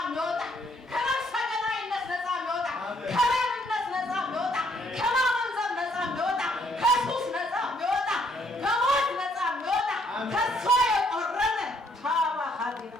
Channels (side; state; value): both; normal; correlation 0.68